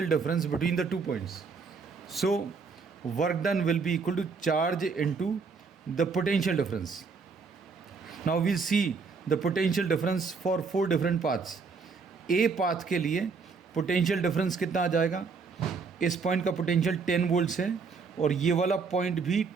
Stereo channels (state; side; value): quieter; left; 4.9 dB